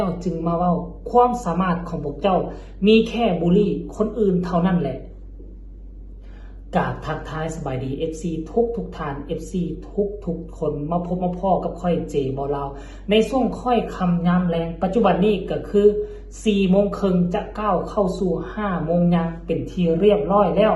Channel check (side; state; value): both; identical; correlation 1.00